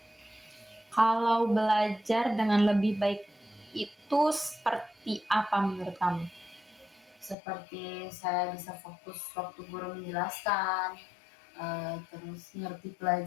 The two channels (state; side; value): drops out; right; at 7.4 s